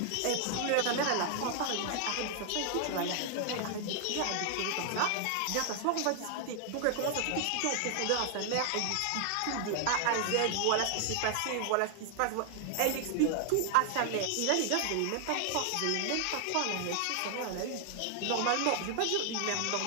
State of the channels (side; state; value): both; different; correlation 0.00